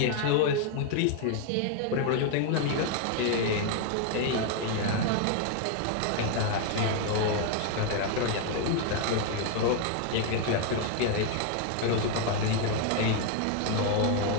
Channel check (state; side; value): different; both; correlation 0.00